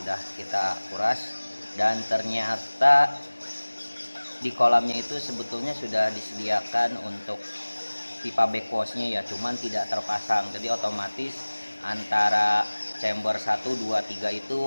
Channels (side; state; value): both; inverted; correlation -1.00